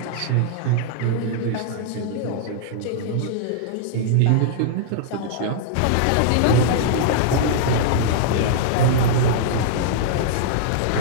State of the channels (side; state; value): both; different; correlation -0.01